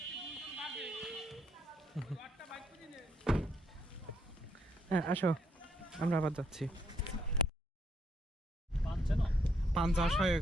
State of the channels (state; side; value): normal; both; correlation 0.73